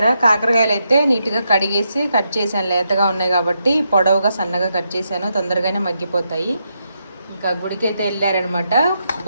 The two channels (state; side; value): inverted; both; correlation -0.82